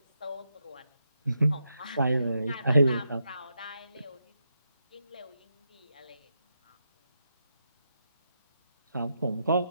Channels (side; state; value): both; inverted; correlation -0.84